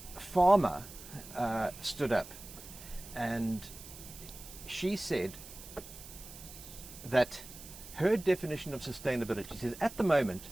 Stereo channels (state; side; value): noise; right; hiss, 15 dB below the sound